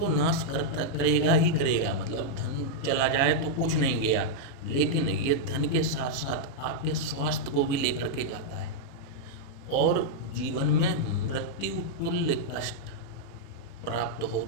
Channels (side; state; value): right; late; 36 ms